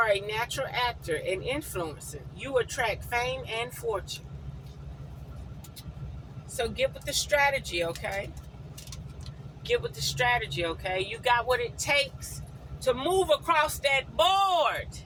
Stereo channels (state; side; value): identical; both; correlation 1.00